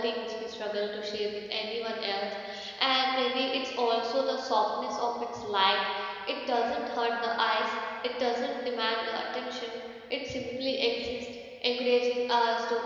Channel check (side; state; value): both; identical; correlation 1.00